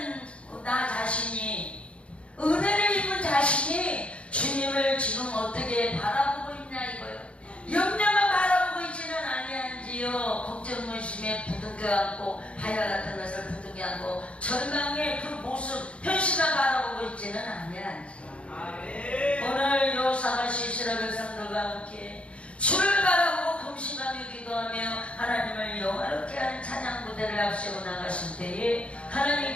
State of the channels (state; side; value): late; right; 0.060 ms